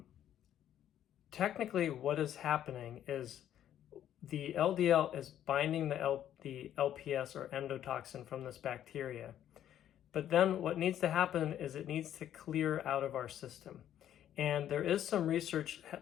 technically what is happening is the LDL is binding the LPS, or endotoxin, from this bacteria. But then what needs to happen is it needs to clear out of our system. And there is some research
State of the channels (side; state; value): right; quieter; 11.0 dB